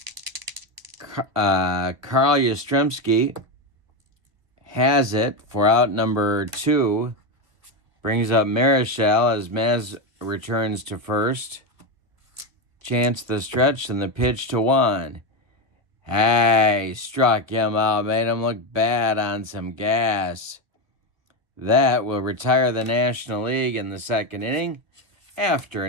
Carl Yastrzemski has it for out number 2. Brings up Marichal as Maz returns to first. Chance the stretch, and the pitch to Juan. Hey, struck him out, made him look bad on some gas. That will retire the National League in the second inning. After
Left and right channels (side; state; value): left; late; 1.8 ms